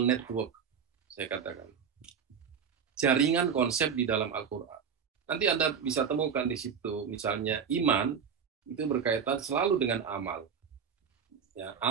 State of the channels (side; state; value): left; quieter; 7.0 dB